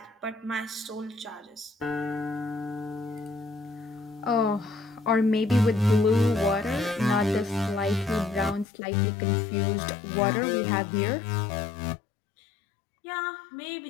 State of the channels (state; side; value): drops out; right; at 8.7 s